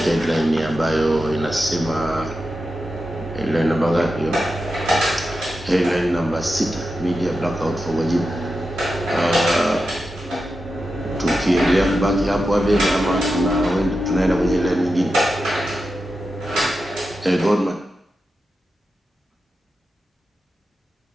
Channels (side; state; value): both; normal; correlation 0.90